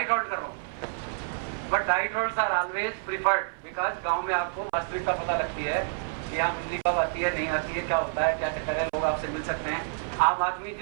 हॉल्ट कर रहा हूँ। But night halts are always preferred, because गांव में आपको वास्तविकता पता लगती है कि यहाँ बिजली कब आती है, नहीं आती है, क्या होता है, क्या चक्कर है, लोग आपसे मिल सकते हैं। आम आदमी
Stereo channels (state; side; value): silent; left; 57 dB below the other